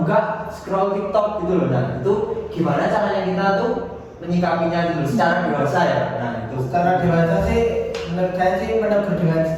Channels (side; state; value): both; identical; correlation 1.00